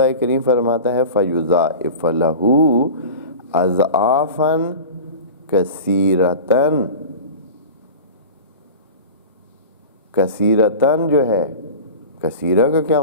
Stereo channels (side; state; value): both; inverted; correlation -0.34